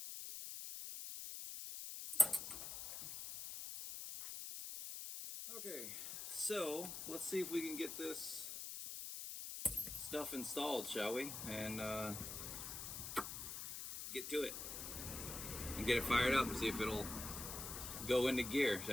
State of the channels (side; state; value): left; noise; hiss, 6 dB below the sound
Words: Okay, so let's see if we can get this stuff installed, shall we? And get to it and get it fired up and see if it'll go into gear,